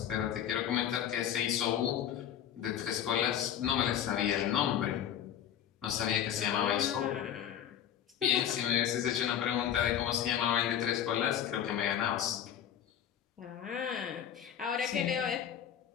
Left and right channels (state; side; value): quieter; right; 9.9 dB